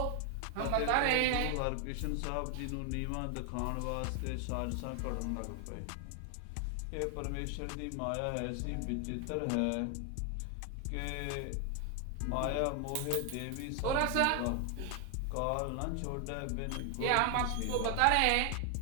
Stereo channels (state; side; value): different; both; correlation 0.00